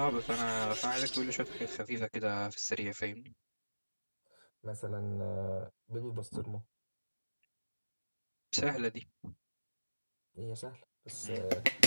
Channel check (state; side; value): inverted; both; correlation -1.00